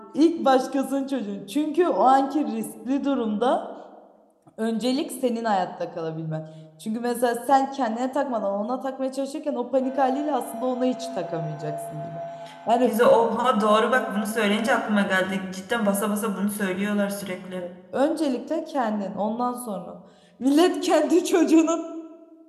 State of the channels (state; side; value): identical; both; correlation 1.00